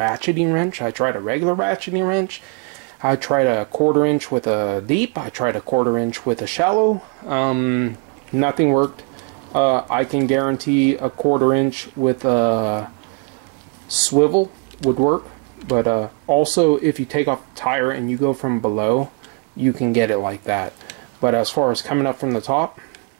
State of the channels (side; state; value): left; quieter; 34.6 dB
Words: wrench, I tried a regular ratcheting wrench, I tried a 1/4 inch with a deep, I tried a 1/4 inch with a shallow. Nothing worked. I can guarantee a 1/4 inch with a swivel would work, but also if you take off the tire and you go from below, you can get it like that. But as far as coming up from the top,